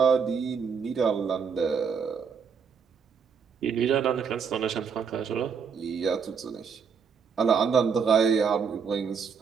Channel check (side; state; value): left; quieter; 6.3 dB